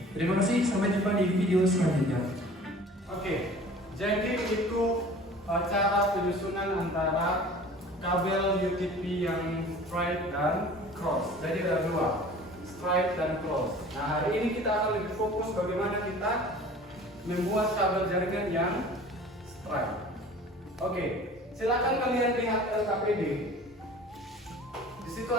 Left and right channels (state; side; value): normal; both; correlation 0.45